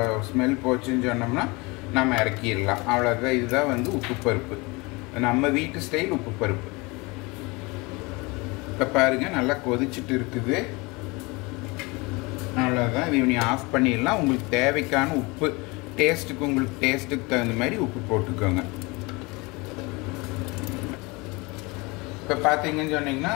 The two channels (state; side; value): quieter; right; 25.8 dB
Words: ஸ்மெல் போச்சுன்னு சொன்னோம்னா நம்ம இறக்கிடலாம். அவ்வளோதான். இதுதான் வந்து உப்பு பருப்பு, நம்ம வீட்டு ஸ்டைல் உப்பு பருப்பு. இப்போ பாருங்க, நல்லா கொதிச்சுட்டு இருக்குது. அவ்வளோதான். இது நீ ஆஃப் பண்ணிடலாம். உங்களுக்கு தேவைக்கான உப்பு டேஸ்ட்டுக்கு, உங்களுக்கு டேஸ்ட்டுக்கு தகுந்த மாதிரி உப்பு போட்டுக்கோங்க. இப்போ பார்த்தீங்கன்னு சொன்னீங்கன்னா